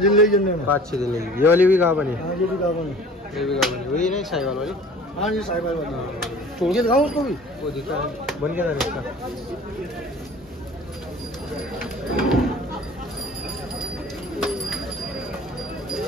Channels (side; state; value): both; normal; correlation 0.46